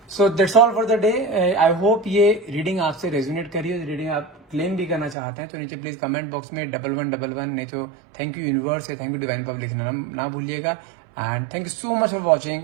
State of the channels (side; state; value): left; drops out; at 5.2 s